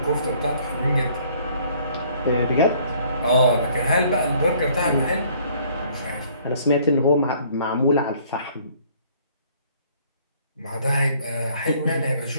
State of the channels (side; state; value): both; inverted; correlation -0.60